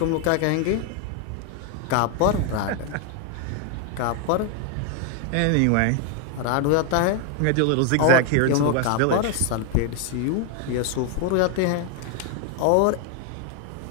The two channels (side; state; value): both; different; correlation 0.01